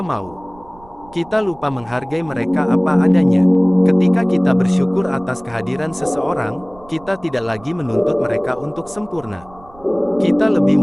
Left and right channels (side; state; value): right; noise; rumble, 24 dB below the sound